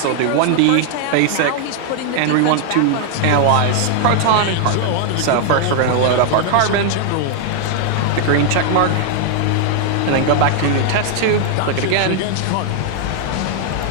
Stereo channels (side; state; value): both; different; correlation 0.00